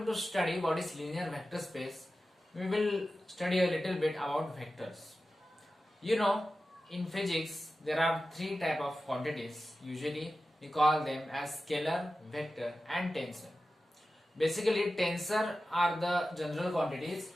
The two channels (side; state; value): both; normal; correlation 0.93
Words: to study what is linear vector space, we will study a little bit about vectors. You know, in physics there are three type of quantities. Usually we call them as scalar, vector and tensor. Basically tensor are the general quantities.